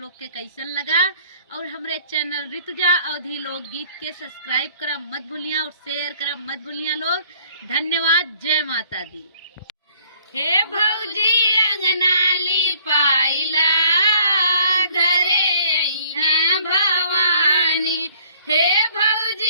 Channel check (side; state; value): both; inverted; correlation -0.58